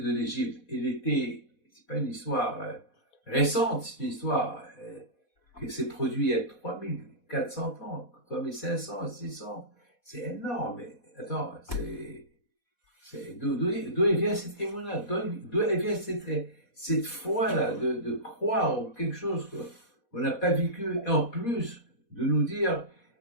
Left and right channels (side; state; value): right; late; 4.1 ms